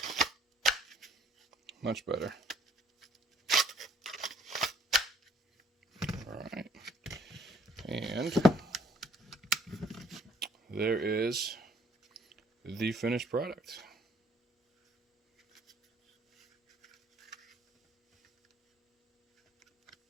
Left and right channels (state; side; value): normal; both; correlation 0.60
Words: Much better. All right. And there is the finished product.